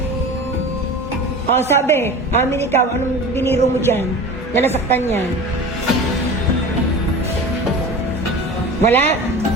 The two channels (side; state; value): both; normal; correlation 0.35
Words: O sabi, amin ikaw, anong biniro mo dyan? Na nasaktan yan? Wala?